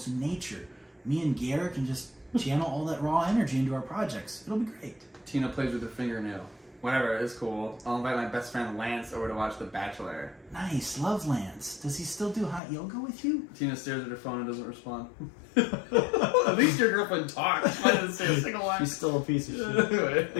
in nature. Me and Garrett can just channel all that raw energy into our projects. It'll be great. Tina plays with her fingernail. Whatever, it's cool. I'll invite my best friend Lance over to watch The Bachelor. Nice, love Lance. Does he still do hot yoga with you? Tina stares at her phone and doesn't respond. At least your girlfriend talks. Why doesn't say a single line? She's still a piece of shit.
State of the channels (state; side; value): drops out; right; at 12.6 s